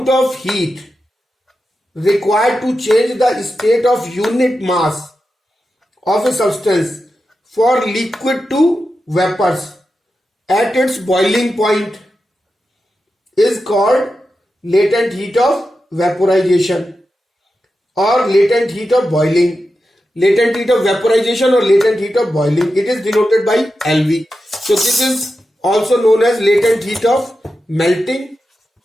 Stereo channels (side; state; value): both; normal; correlation 0.90